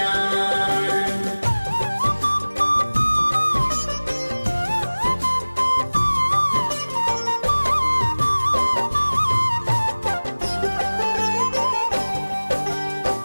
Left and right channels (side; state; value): both; inverted; correlation -1.00